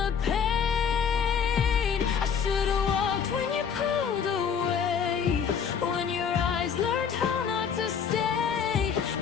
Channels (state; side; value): quieter; right; 7.1 dB